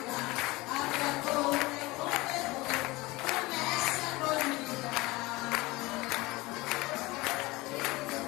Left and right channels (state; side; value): quieter; right; 21.6 dB